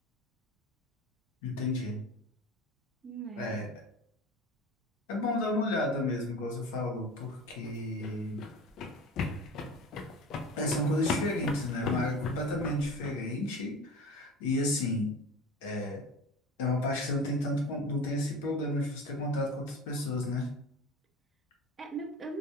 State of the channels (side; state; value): both; normal; correlation 0.35